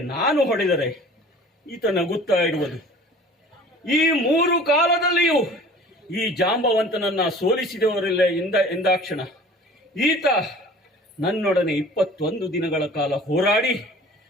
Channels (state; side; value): normal; both; correlation 0.45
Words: ನಾನು ಹೊಡೆದರೆ ಈತ ನಗುತ್ತಾ ಇರುವುದು. ಈ 3 ಕಾಲದಲ್ಲಿಯೂ ಈ ಜಾಂಬವಂತನನ್ನ ಸೋಲಿಸಿದವರಿಲ್ಲ ಎಂದಾಕ್ಷಣ ಈತ ನನ್ನೊಡನೆ 21 ದಿನಗಳ ಕಾಲ ಹೋರಾಡಿ